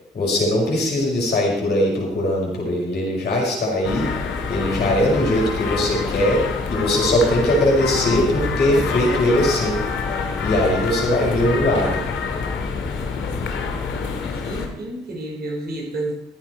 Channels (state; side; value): normal; both; correlation 0.58